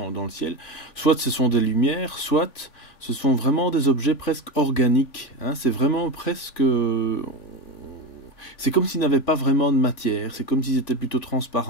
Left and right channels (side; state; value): right; late; 3.5 ms